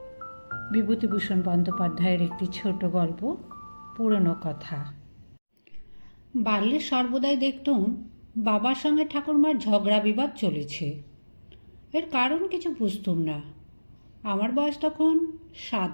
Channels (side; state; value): both; inverted; correlation -1.00